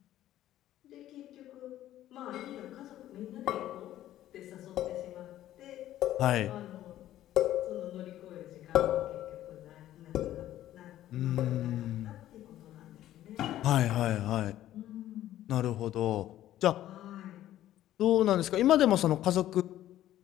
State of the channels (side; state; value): right; quieter; 13.2 dB